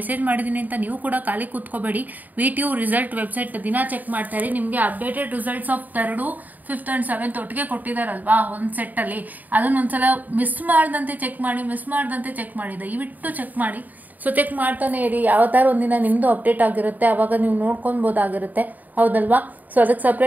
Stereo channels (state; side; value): late; left; 0.082 ms